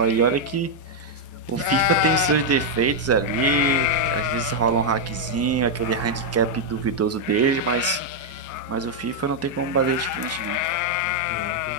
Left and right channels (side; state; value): both; normal; correlation -0.01